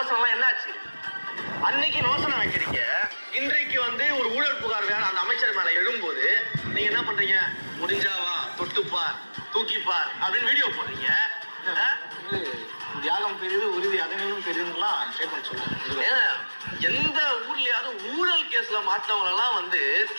எல்லாம் என்னாச்சு? அன்னைக்கு விமர்சனம் வைக்கிறீங்க, இன்றைக்கு ஒரு ஊழல் புகார் வேற அந்த அமைச்சர் மேல எழும்போது நீங்க என்ன பண்றீங்க? முடிஞ்சாவா, தொட்டுப்பார், தூக்கிப்பார் அப்படின்னு வீடியோ போடுறீங்க. தியாகம் பெரிது, உறுதி அதனையும் பெரிதுலாம் ஸ்டேட்மெண்ட் சொல்லுங்க. எந்த ஊர்லயாவது ஊழல் கேஸ்ல மாற்றவங்க எல்லாம்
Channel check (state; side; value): inverted; both; correlation -1.00